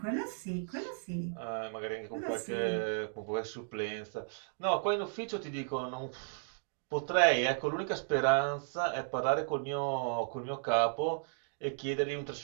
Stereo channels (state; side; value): silent; left; digital silence